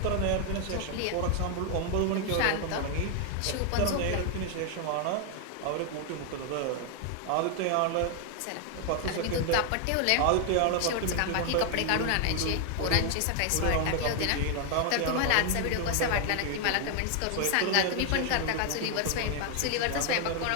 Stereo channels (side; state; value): both; different; correlation 0.00